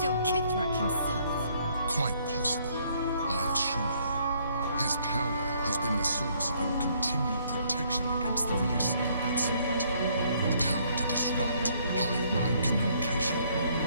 Kithrak himself. Quite possible, I assure you. His power has been the source of your continued protection against the voice of the Absolute. The power to disrupt hive mind communication.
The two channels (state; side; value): inverted; both; correlation -0.66